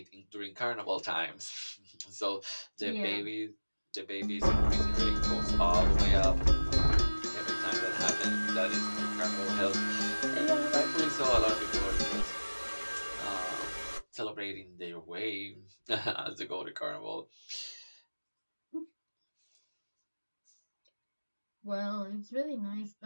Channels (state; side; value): inverted; both; correlation -1.00